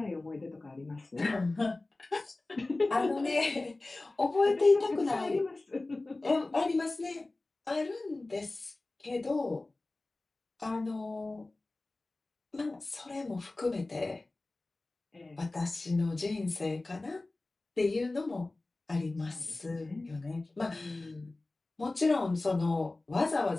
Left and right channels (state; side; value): quieter; right; 3.0 dB